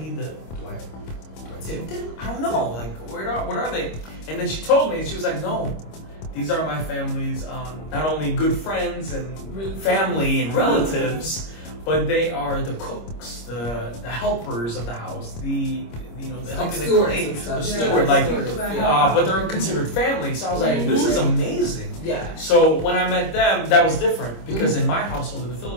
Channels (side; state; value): right; late; 25 ms